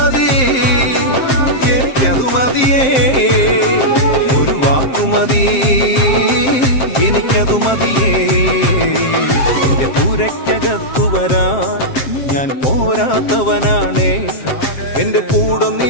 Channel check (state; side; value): late; right; 7.6 ms